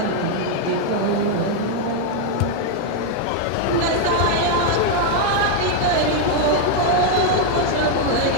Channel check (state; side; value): different; both; correlation 0.00